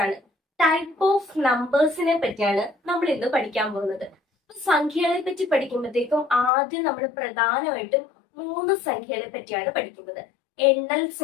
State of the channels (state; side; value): drops out; right; at 6.5 s